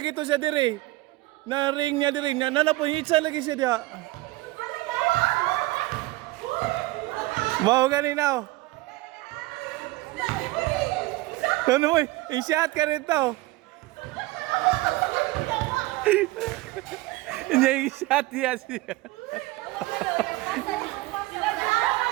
to siya diri. Na ring niya diri. Po hitsa lagi siya dia. Mau ganinaw. Ano mo? I-shot ka rito. Hindi i-shot niya siya.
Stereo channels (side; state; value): left; quieter; 19.7 dB